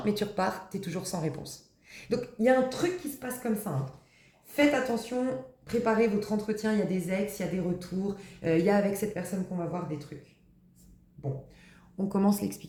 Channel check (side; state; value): both; identical; correlation 1.00